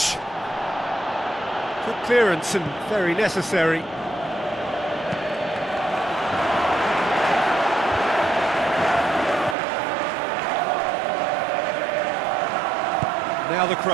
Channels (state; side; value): drops out; left; at 9.6 s